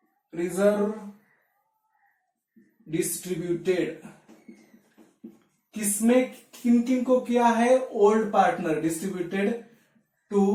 रिजर्व डिस्ट्रीब्यूटेड। किसमें किन किन को किया है? Old partner, distributed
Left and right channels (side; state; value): both; identical; correlation 1.00